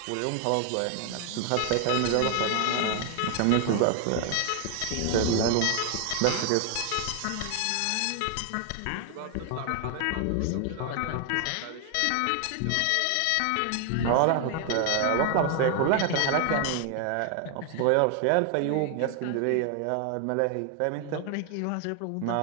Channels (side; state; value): both; different; correlation 0.00